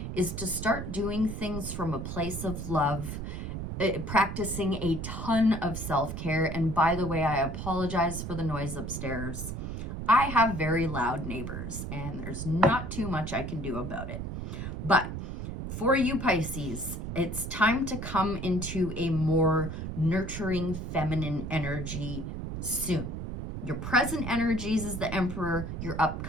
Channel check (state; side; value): noise; right; rumble, 6 dB below the sound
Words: is to start doing things from a place of love, practicing a ton of self-care. And by the way, I apologize for the noise upstairs. I have very loud neighbors and there's not too much I can do about it. But for you Pisces, it's time to come into a more nurturing feminine energy soon. Your present energies is the Emperor, your